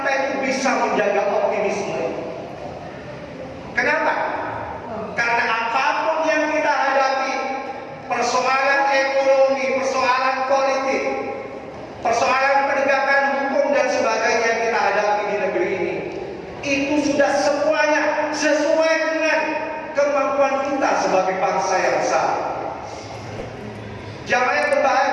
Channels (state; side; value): identical; both; correlation 1.00